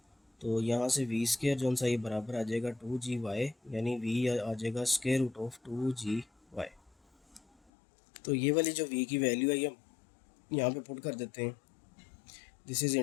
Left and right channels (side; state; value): right; drops out; at 7.7 s